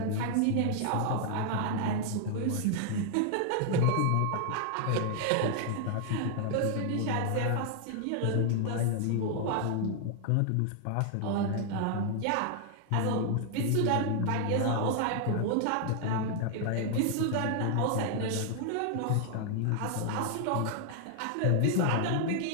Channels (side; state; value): both; different; correlation 0.00